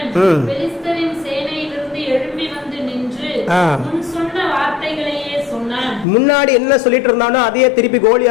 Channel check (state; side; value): drops out; right; at 6.1 s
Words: பெலிஸ்தரின் சேனையிலிருந்து எழும்பி வந்து நின்று முன் சொன்ன வார்த்தைகளையே சொன்னான். முன்னாடி என்ன சொல்லிட்டு இருந்தானோ அதையே திருப்பி